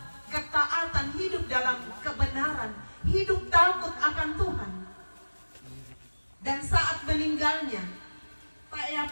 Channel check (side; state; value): both; inverted; correlation -1.00